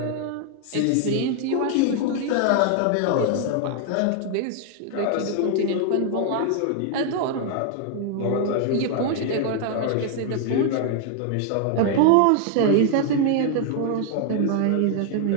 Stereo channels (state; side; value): different; both; correlation 0.00